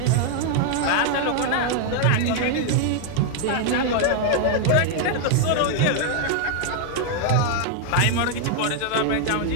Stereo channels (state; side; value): different; both; correlation 0.00